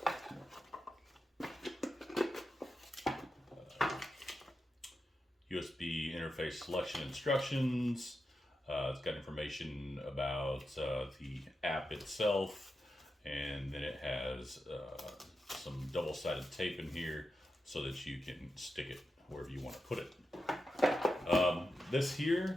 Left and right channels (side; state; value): both; normal; correlation 0.89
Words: USB interface selection instructions. It's got information about the app itself, and then it has some double-sided tape in here so that you can stick it wherever you want to put it. This